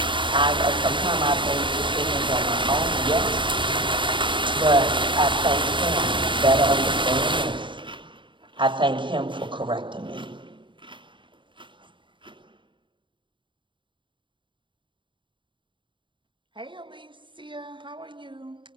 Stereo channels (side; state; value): left; late; 0.23 ms